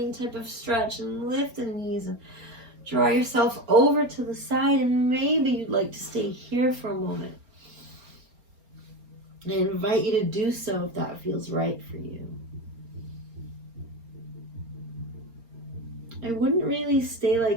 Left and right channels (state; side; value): late; left; 4.3 ms